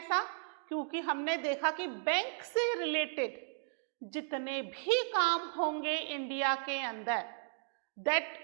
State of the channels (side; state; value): left; silent; digital silence